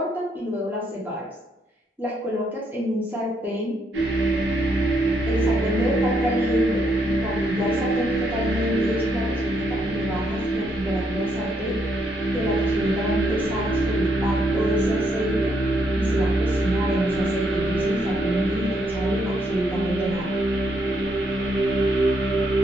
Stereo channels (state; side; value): normal; both; correlation 0.75